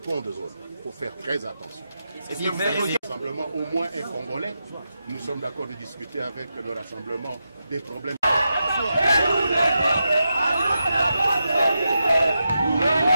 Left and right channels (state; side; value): inverted; both; correlation -0.88